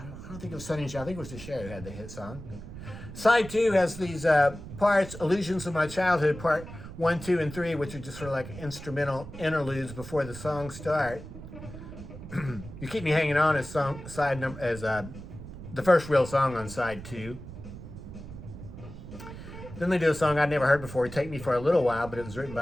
don't think it was Sonny and Cher. I think it was the Cher who had the hit song. Side 2 has these parts, Illusions of My Childhood, part 1, 2, and 3, which are just sort of like instrumental interludes before the songs start. You Keep Me Hanging On as the first real song on side 2. Then they do a song I'd never heard before, Take Me for a Little While, but it was written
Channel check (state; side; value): noise; right; rumble, 12 dB below the sound